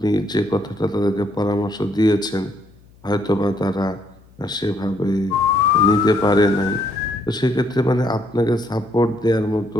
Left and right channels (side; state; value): left; noise; hum, 27 dB below the sound